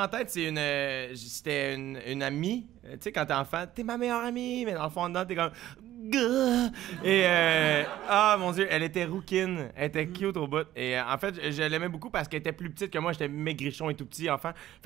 tête, c'était une amie. Tu sais, quand t'es enfant, t'es ma meilleure amie, mais dans le fond, dedans, t'es comme... Et, mon Dieu, elle était rouquine. Elle était cute au bout. Et en fait, je l'aimais beaucoup parce qu'elle était plus petite que moi. J'étais maigrichon et tout petit enfant.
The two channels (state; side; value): quieter; left; 13.6 dB